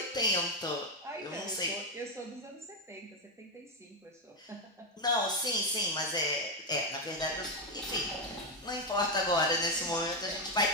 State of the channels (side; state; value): both; normal; correlation 0.07